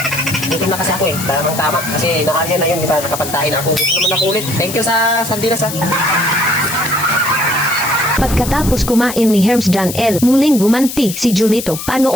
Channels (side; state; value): left; noise; hiss, 8 dB below the sound